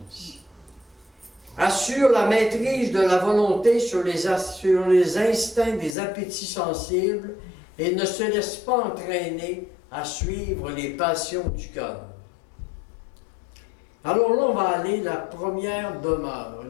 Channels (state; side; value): drops out; right; at 6.0 s